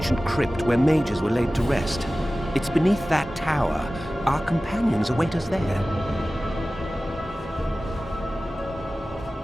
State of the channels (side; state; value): both; normal; correlation 0.96